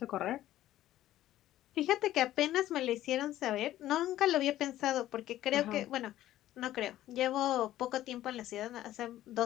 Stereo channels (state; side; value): quieter; right; 13.8 dB